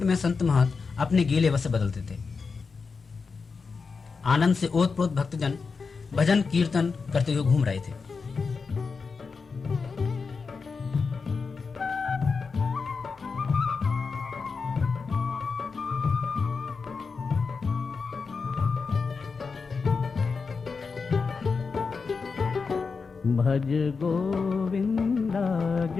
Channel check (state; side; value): quieter; right; 4.9 dB